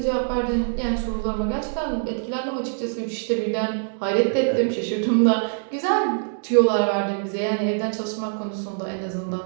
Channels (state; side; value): silent; left; digital silence